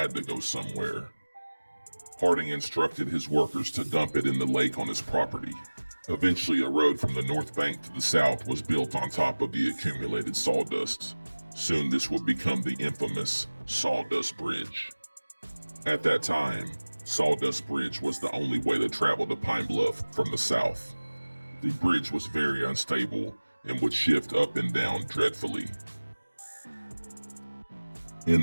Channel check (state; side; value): inverted; both; correlation -1.00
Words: to go somewhere. Harding instructed his workers to dump it in the lake on his property. Eventually, a road from the north bank to the south was built on top of the accumulated sawdust. Soon this would become the infamous Sawdust Bridge. At that time, Sawdust Bridge was the only way to travel to Pine Bluff from the south. The bridge was very unstable and would shift up and down dreadfully. In